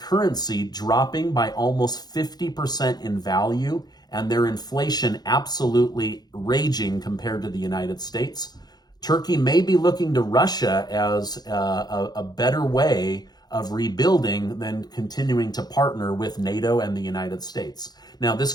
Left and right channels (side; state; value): right; late; 0.19 ms